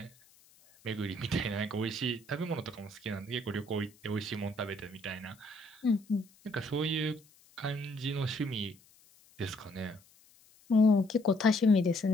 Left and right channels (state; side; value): noise; left; hiss, 28 dB below the sound